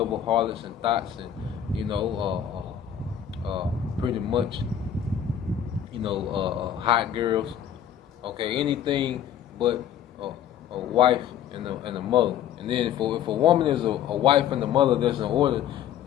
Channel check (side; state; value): right; quieter; 9.7 dB